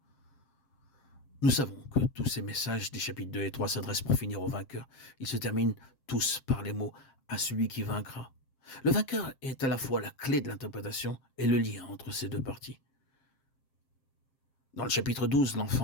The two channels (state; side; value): late; right; 7.5 ms